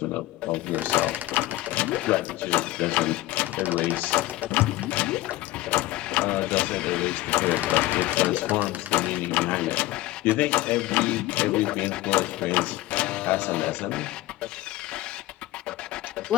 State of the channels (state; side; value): quieter; right; 17.0 dB